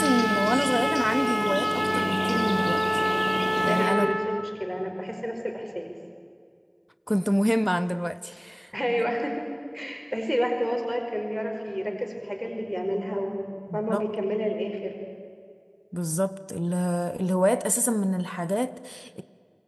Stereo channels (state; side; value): identical; both; correlation 1.00